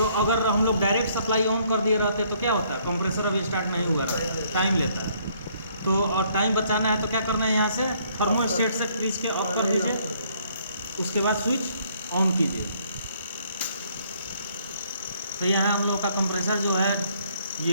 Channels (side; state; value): both; inverted; correlation -0.65